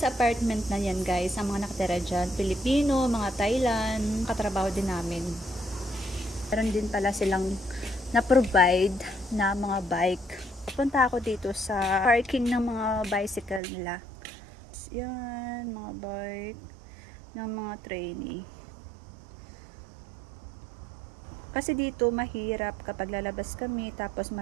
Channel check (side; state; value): left; drops out; at 13.6 s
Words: apartment na yan, guys, ang mga nakatira dyan, Pilipino, mga Thailand, katrabaho din namin. Meron din pala silang na-provide na mga bike. Punta ako dito sa parking ng mga bicycle nila. Yan, mga bike ng mga trainee. Kasi dito mahirap kapag lalabas kami tapos